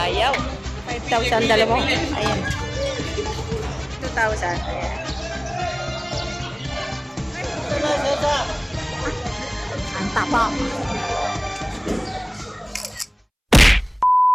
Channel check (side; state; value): both; identical; correlation 1.00